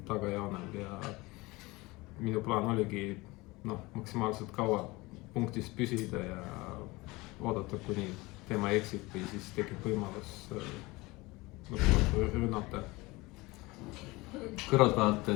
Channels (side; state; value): right; quieter; 22.3 dB